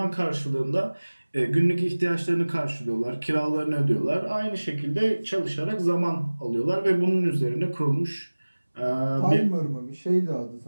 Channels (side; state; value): both; inverted; correlation -1.00